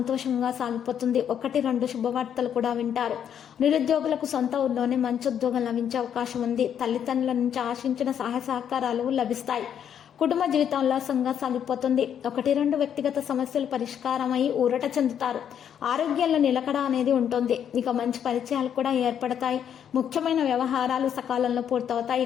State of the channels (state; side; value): quieter; right; 8.9 dB